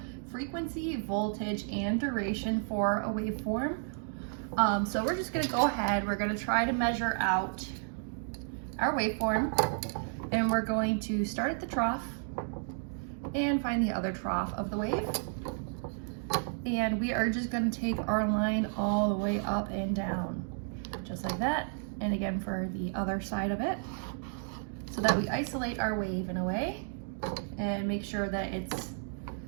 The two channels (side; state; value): left; silent; 56 dB below the other